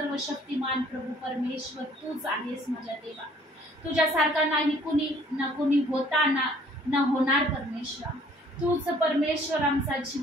शक्तिमान प्रभू परमेश्वर, तूच आहेस माझ्या देवा. तुझ्यासारखा नाही कुणी, न कुणी होता न होणार परमेश्वरा. तूच परमेश्वर आमचा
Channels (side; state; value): both; normal; correlation 0.58